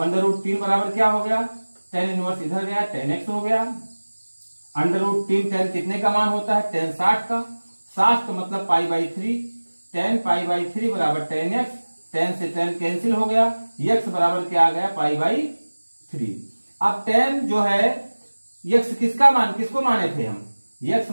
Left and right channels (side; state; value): both; inverted; correlation -1.00